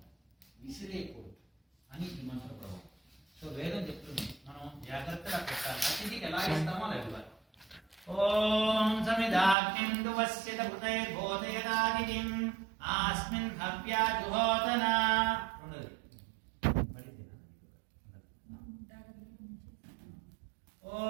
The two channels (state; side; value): drops out; left; at 9.6 s